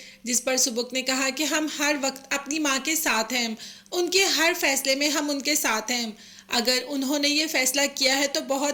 जिस पर सुबुक ने कहा कि हम हर वक्त अपनी माँ के साथ हैं, उनके हर फैसले में हम उनके साथ हैं। अगर उन्होंने ये फैसला किया है तो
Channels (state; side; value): identical; both; correlation 1.00